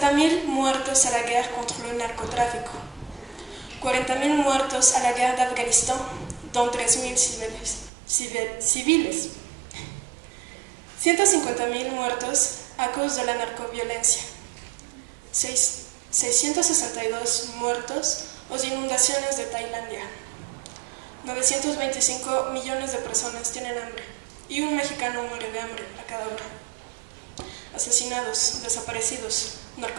muertos a la guerre contre le narcotráfico. 40.000 muertos a la guerre d'Afghanistan, dont 13.000 civiles. 150.000 muertos a causa de la narcoviolencia. 662 muertos en inundaciones de Tailandia. 925 millones de personas tienen hambre y un mexicano muere de hambre a cada hora. Asesinados, desaparecidos,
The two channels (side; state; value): left; drops out; at 7.9 s